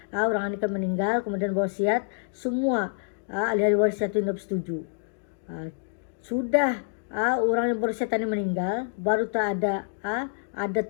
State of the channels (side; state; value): right; silent; digital silence